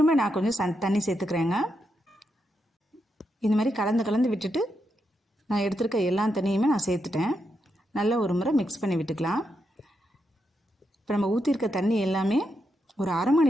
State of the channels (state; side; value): normal; both; correlation 0.83